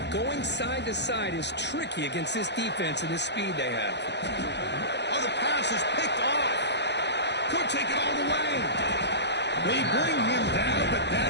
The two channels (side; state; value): right; late; 0.50 ms